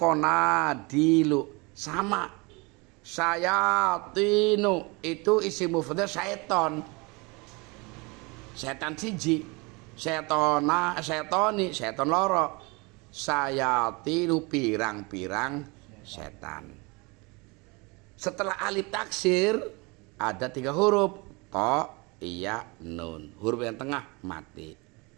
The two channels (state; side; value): quieter; left; 27.5 dB